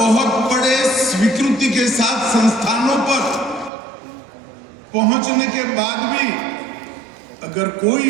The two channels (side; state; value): left; drops out; at 3.7 s